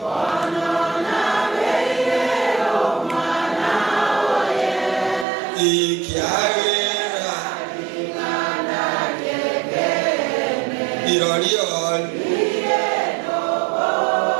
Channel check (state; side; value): drops out; left; at 5.2 s